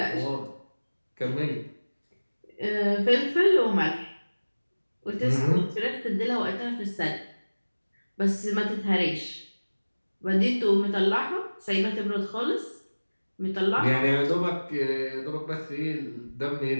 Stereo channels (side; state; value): both; inverted; correlation -1.00